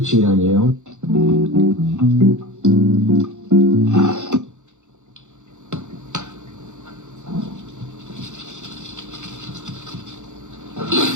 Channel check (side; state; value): left; late; 0.84 ms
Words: cheat on you,